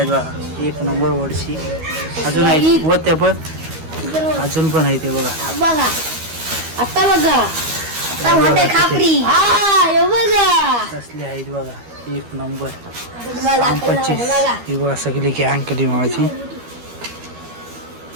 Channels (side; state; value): left; late; 13 ms